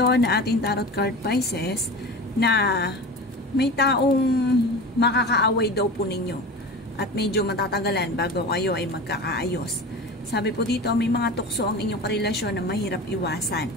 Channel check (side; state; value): both; normal; correlation 0.31